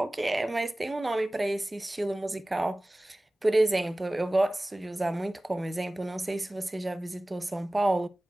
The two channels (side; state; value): both; normal; correlation 0.98